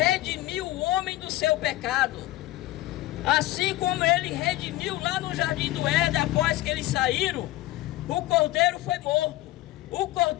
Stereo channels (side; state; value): right; quieter; 16.9 dB